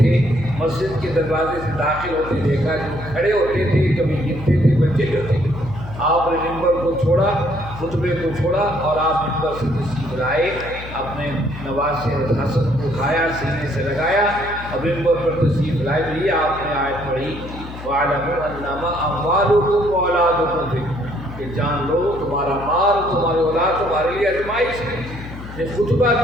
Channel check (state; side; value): noise; left; hum, 12 dB below the sound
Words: مسجد کے دروازے سے داخل ہوتے دیکھا، جو کھڑے ہوتے تھے کبھی گرتے تھے بچے جو تھے، آپ نے منبر کو چھوڑا، خطبے کو چھوڑا اور آپ منبر سے تشریف لائے، اپنے نواسے حسن کو اٹھایا، سینے سے لگایا اور منبر پر تشریف لائے۔ بھی آپ نے آیت پڑھی وَاعْلَمُوا أَنَّمَا أَمْوَالُكُمْ وَأَوْلَادُكُمْ فِتْنَةٌ، کہ جان لو تمہارا مال تمہاری اولاد تمہارے لیے آزمائش ہے۔ یہ خطبہ